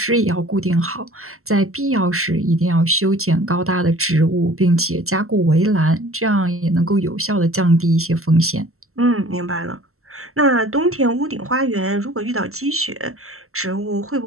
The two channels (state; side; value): late; left; 0.63 ms